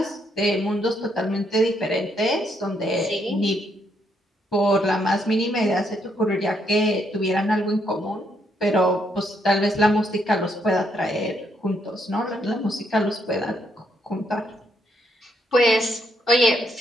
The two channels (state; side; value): normal; both; correlation 0.75